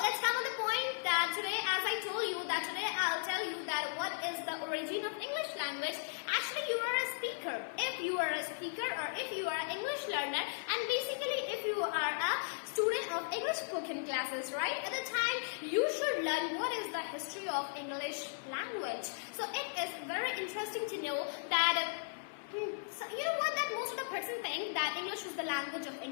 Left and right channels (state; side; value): silent; right; 53 dB below the other